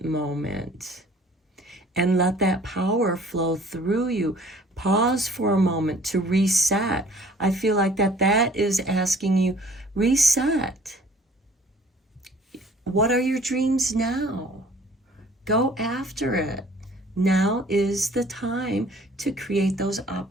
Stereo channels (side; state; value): both; normal; correlation 0.53